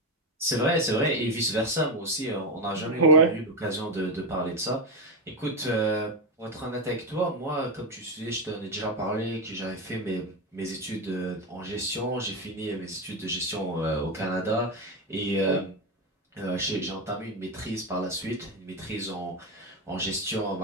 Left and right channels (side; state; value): both; normal; correlation 0.12